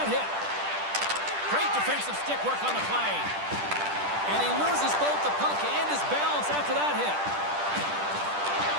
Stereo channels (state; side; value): late; left; 10 ms